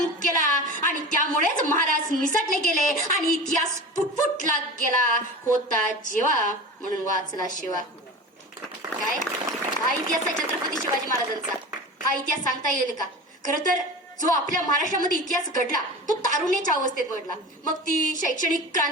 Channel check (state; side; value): normal; both; correlation 0.32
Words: केला आणि त्यामुळेच महाराज निसटले गेले आणि इतिहास फुटफुटला गेला. होता जेवा म्हणून वाचला शिवा. काय हा इतिहास आहे छत्रपती शिवाजी महाराजांचा. हा इतिहास सांगता येईल का? खरं तर जो आपल्या महाराष्ट्रामध्ये इतिहास घडला तो तारुण्याच्या अवस्थेत घडला. मग ती शैक्षणिक